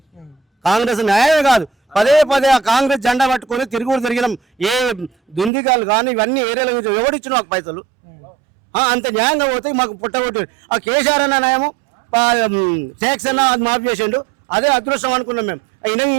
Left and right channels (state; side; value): drops out; left; at 5.5 s